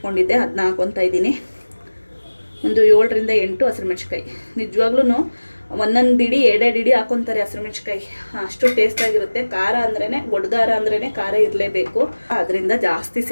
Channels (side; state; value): both; inverted; correlation -1.00